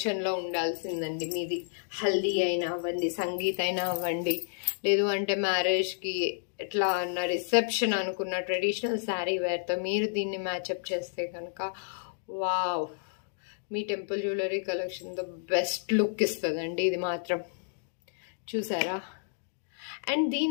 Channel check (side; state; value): right; silent; digital silence